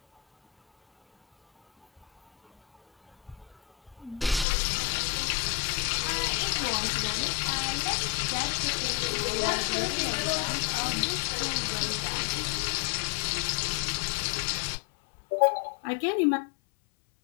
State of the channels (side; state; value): right; drops out; at 4.5 s